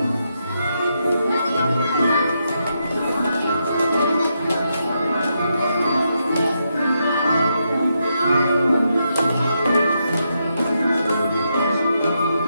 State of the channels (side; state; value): both; inverted; correlation -0.82